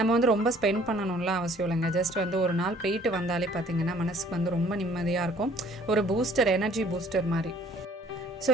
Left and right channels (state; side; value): normal; both; correlation 0.57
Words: வந்து ரொம்ப ஸ்பெண்ட் பண்ணணும்லாம் அவசியம் இல்லைங்க. ஜஸ்ட் வந்து ஒரு நாள் போயிட்டு வந்தாலே பார்த்திங்கன்னா மனசுக்கு வந்து ரொம்ப நிம்மதியாக இருக்கும். ஒரு பூஸ்டர், எனர்ஜி பூஸ்டர் மாதிரி. ஸோ